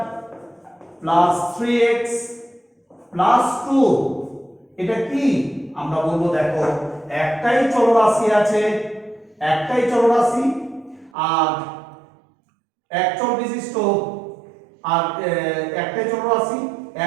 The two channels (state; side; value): drops out; left; at 11.1 s